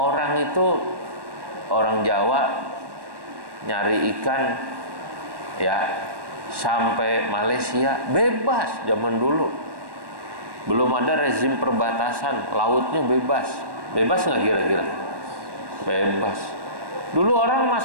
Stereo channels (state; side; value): late; left; 1.1 ms